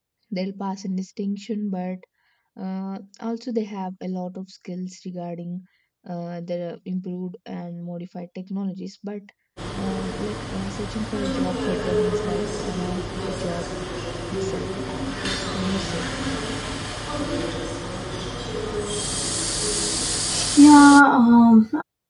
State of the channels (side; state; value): both; identical; correlation 1.00